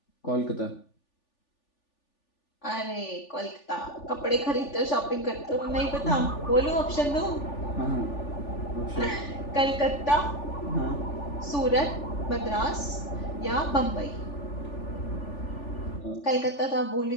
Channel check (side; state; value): right; late; 3.4 ms